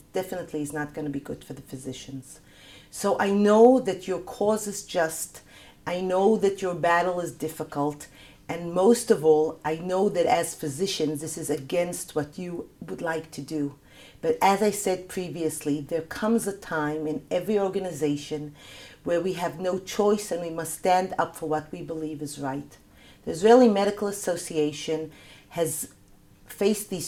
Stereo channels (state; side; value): identical; both; correlation 1.00